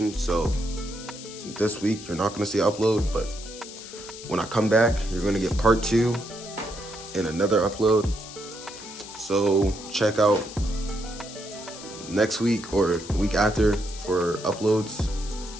so this week you're not gonna see an upload, but when I come back, you're gonna get part 2 and another upload. So check out next week or week after for uploads.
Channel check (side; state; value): left; noise; hiss, 14 dB below the sound